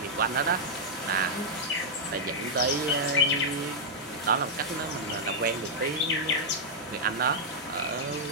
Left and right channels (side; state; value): both; normal; correlation -0.04